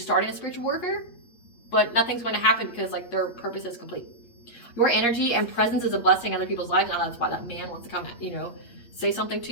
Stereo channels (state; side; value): late; right; 8.4 ms